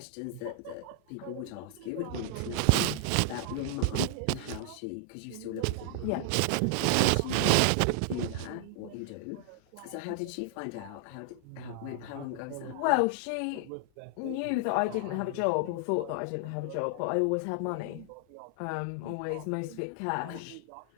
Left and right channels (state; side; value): different; both; correlation 0.00